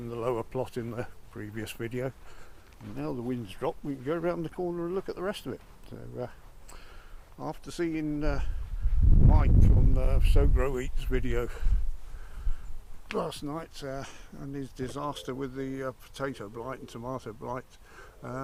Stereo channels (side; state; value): both; identical; correlation 1.00